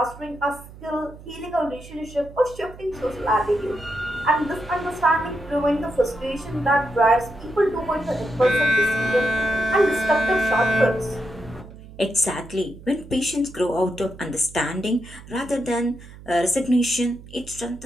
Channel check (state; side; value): noise; right; hum, 18 dB below the sound